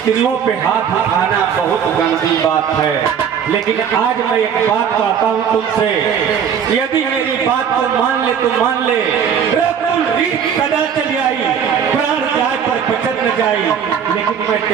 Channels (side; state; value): left; quieter; 7.8 dB